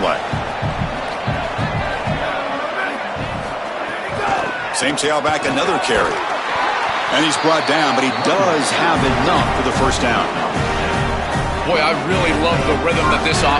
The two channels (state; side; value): identical; both; correlation 1.00